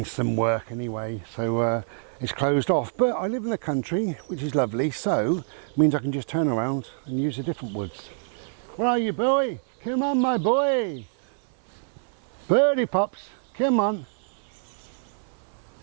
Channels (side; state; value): left; silent; 58 dB below the other